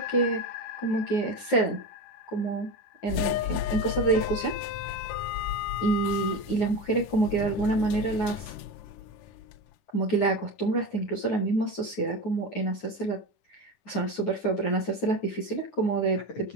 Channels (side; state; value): right; late; 9.4 ms